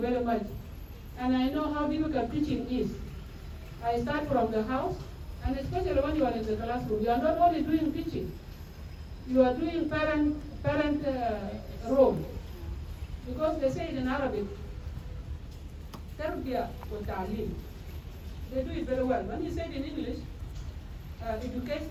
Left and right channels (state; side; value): identical; both; correlation 1.00